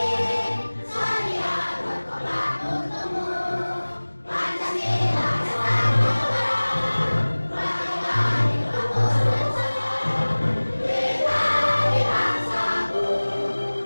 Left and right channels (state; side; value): inverted; both; correlation -1.00